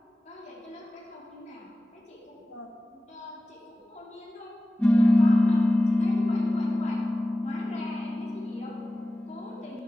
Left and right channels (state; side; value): normal; both; correlation 0.96